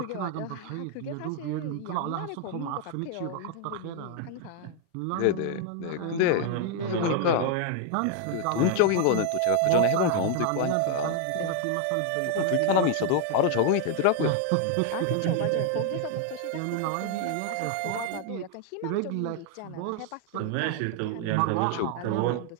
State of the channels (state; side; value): different; both; correlation 0.00